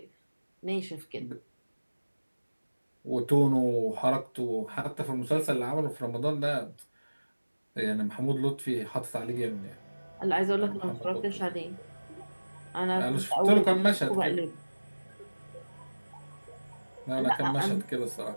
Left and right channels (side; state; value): both; inverted; correlation -1.00